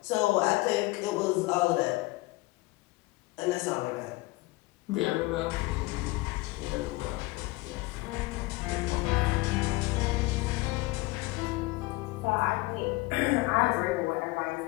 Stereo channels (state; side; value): quieter; right; 21.5 dB